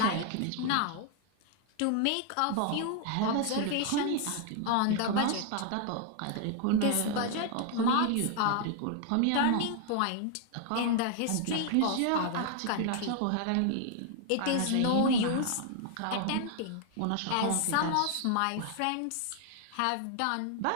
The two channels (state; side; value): different; both; correlation 0.00